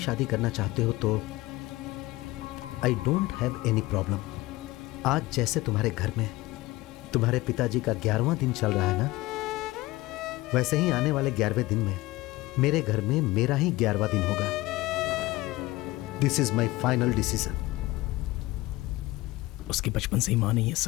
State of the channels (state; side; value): quieter; right; 19.3 dB